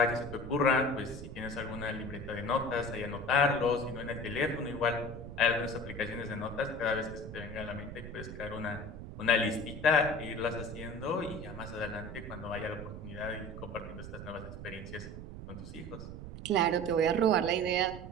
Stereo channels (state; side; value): noise; right; rumble, 10 dB below the sound